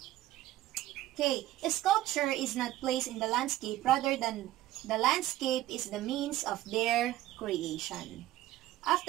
Okay, a sculpture is not placed in the landscape, rather than the landscape is the means of their creation.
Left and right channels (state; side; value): quieter; left; 15.1 dB